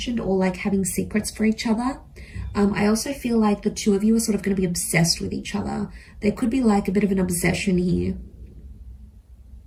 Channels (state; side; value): identical; both; correlation 1.00